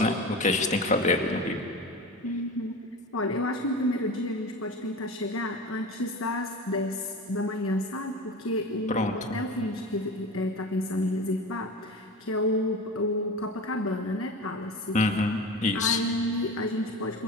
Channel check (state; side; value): normal; both; correlation 0.30